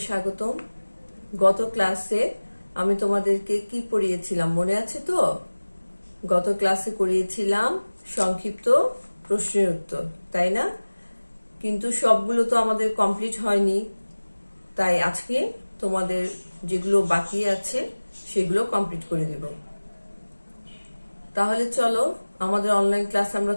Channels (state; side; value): inverted; both; correlation -1.00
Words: স্বাগতম। গত ক্লাসে আমি তোমাদেরকে কি পড়িয়েছিলাম মনে আছে তো? গত ক্লাসে করিয়েছিলাম সংক্ষিপ্ত প্রশ্নের উত্তর, তাই না? কিন্তু সবগুলো তো আমাদের কমপ্লিট হয়নি, তাই আজকে তোমাদের যেগুলো বাকি আছে সেগুলো কমপ্লিট করে দেব। তাহলে চলো আমাদের অনলাইন ক্লাস আমরা